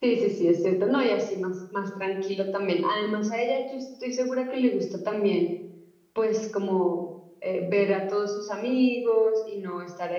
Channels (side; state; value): both; identical; correlation 1.00